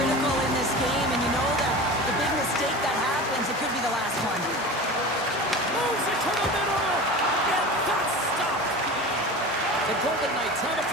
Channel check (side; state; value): both; normal; correlation 0.32